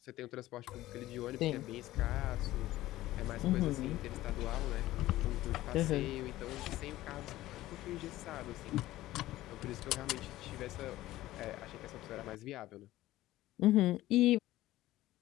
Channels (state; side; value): quieter; right; 15.9 dB